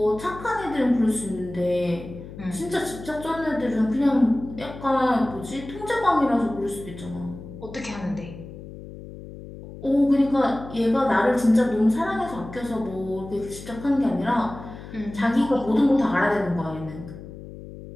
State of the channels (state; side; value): noise; left; hum, 14 dB below the sound